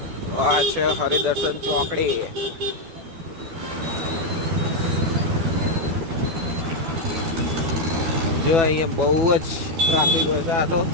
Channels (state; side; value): late; left; 12 ms